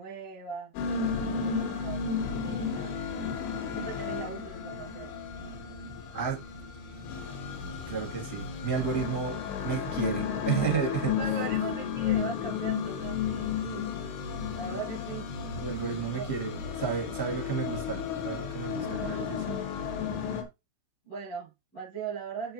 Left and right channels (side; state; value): right; late; 16 ms